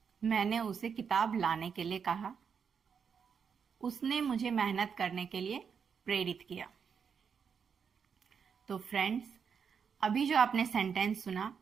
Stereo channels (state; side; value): quieter; left; 6.6 dB